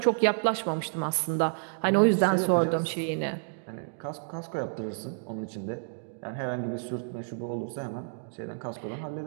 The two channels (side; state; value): left; silent; digital silence